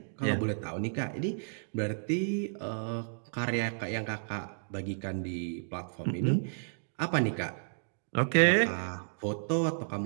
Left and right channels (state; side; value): silent; left; digital silence